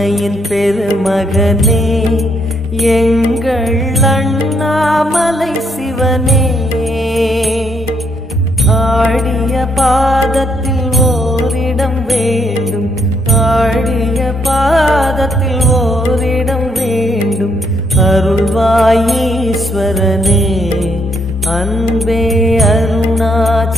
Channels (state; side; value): normal; both; correlation 0.73